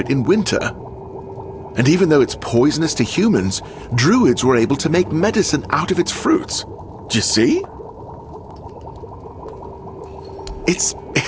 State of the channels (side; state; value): both; identical; correlation 1.00